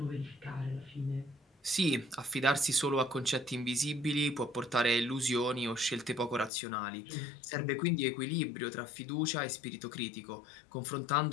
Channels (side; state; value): right; drops out; at 6.5 s